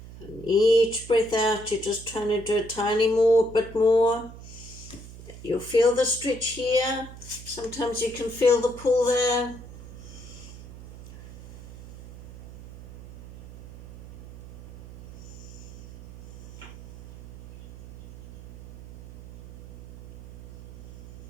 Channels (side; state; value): right; noise; hum, 16 dB below the sound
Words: And each breath out, you're just trying to do a tiny bit more. You'll feel the stretch here. Sometimes you can feel the pull there.